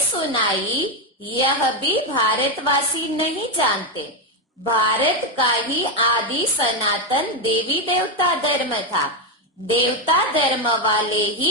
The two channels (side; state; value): both; normal; correlation 0.06